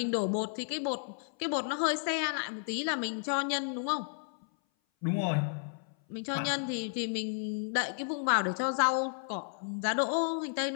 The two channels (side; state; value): right; silent; 56 dB below the other